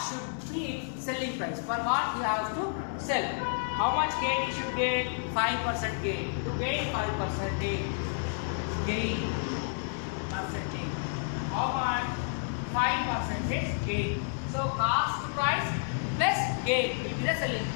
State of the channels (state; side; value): silent; right; digital silence